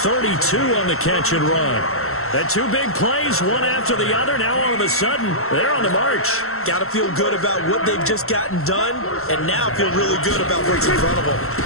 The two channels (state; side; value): late; right; 0.63 ms